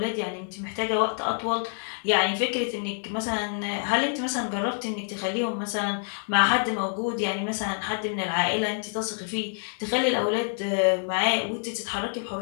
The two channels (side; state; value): right; silent; digital silence